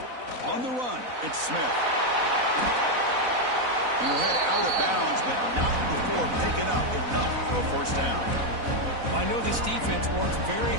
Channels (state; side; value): late; left; 4.0 ms